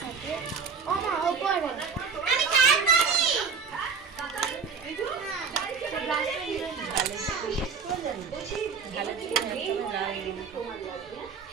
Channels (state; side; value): quieter; left; 5.6 dB